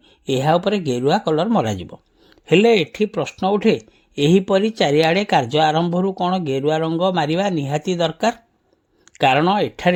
ଏହା ଉପରେ ଗେରୁଆ କଲର ମରାଯିବ। ହେଲେ ଏଠି ପ୍ରଶ୍ନ ଉଠେ, ଏହିପରି ଚାରିଆଡ଼େ କାର୍ଯ୍ୟ ଆରମ୍ଭରୁ କ'ଣ ଗେରୁଆ ରଙ୍ଗ ମାରିବା ନିହାତି ଦରକାର? କାରଣ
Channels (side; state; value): both; identical; correlation 1.00